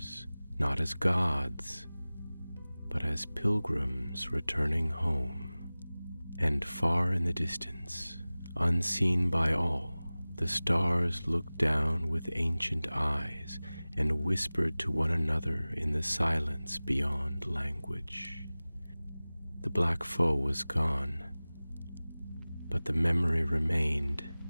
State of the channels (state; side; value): inverted; both; correlation -0.99